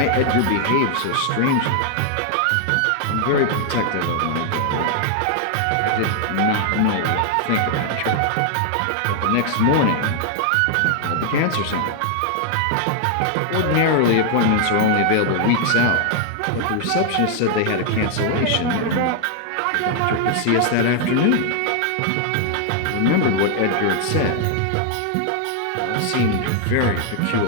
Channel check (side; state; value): both; different; correlation 0.00